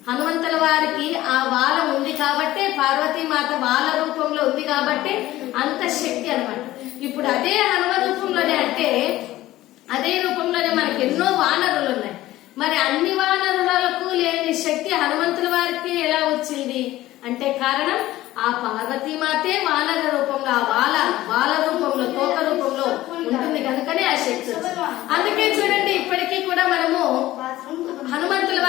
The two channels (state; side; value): quieter; right; 15.8 dB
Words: హనుమంతుల వారికి ఆ వాలం ఉంది కాబట్టి, పార్వతీమాత వాల రూపంలో ఉంది కాబట్టి అంత శక్తి అన్నమాట. ఇప్పుడు అదే హనుమ రూపంలోనే, అంటే అదే రూపంలోనే మనకి ఎన్నో వానరులు ఉన్నాయి. మరి అన్ని వానరులకు లేని శక్తి హనుమంతుల వారికి ఎలా వచ్చింది అంటే కారణం ఆ పార్వతీమాతే వానర రూపంలో, ఆ వాల రూపంలో, తోక రూపంలో ఉంటుంది కనుకనే ఆ శక్తి వచ్చింది. అందుకే చూడండి, ఇప్పటికీ కూడా మనము హనుమంతుల